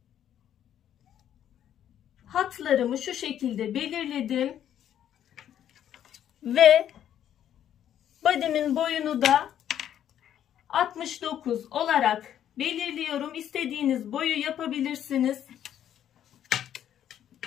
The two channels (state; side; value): quieter; right; 10.4 dB